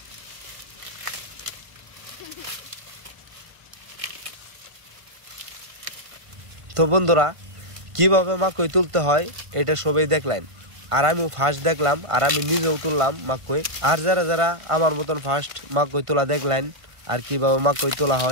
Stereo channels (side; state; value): left; late; 1.5 ms